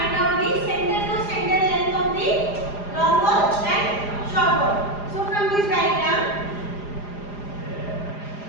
out the center to center length of the long wall and short wall. So from this diagram,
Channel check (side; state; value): right; late; 4.9 ms